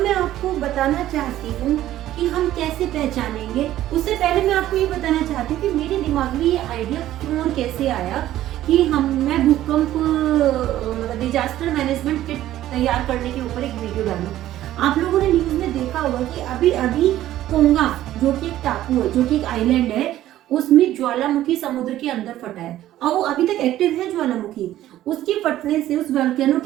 आपको बताना चाहती हूँ कि हम कैसे पहचानेंगे। उससे पहले मैं आपको ये बताना चाहती हूँ कि मेरे दिमाग में ये आइडिया क्यों और कैसे आया कि मैं भूकंप डिजास्टर मैनेजमेंट किट तैयार करने के ऊपर एक वीडियो डालूं। आप लोगों ने न्यूज में देखा होगा कि अभी अभी कोंगा, जो कि एक टापू है, जो कि एक आइलैंड है, उसमें ज्वालामुखी समुद्र के अंदर फटा है और वो अभी तक एक्टिव है ज्वालामुखी। उसके फटने से, उस वोल्केनो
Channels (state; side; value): quieter; left; 13.5 dB